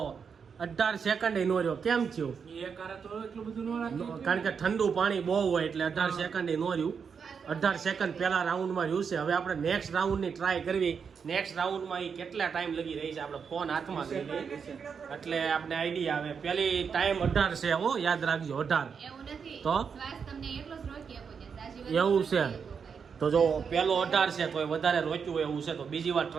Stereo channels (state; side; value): quieter; left; 6.3 dB